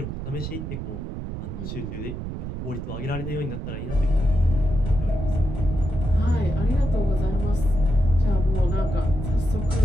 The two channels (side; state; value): right; noise; rumble, 6 dB below the sound